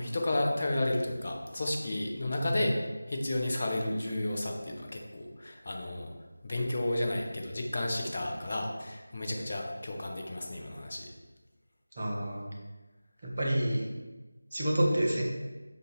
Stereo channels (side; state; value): both; inverted; correlation -0.95